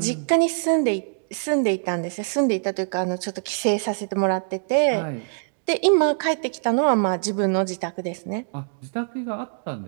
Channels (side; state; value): left; silent; digital silence